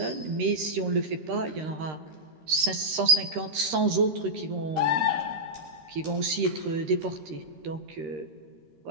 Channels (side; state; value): left; late; 13 ms